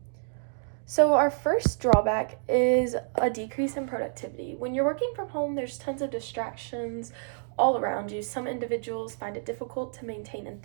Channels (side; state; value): left; silent; digital silence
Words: So, our first drawback is a decrease in productivity. When you're working from home, there's tons of distractions all around you. Some individuals find it difficult to maintain